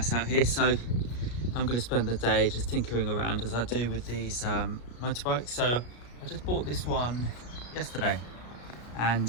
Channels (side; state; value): right; late; 33 ms